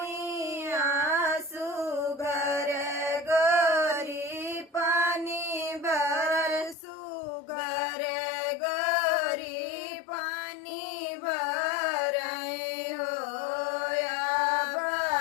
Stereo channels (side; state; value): right; drops out; at 6.8 s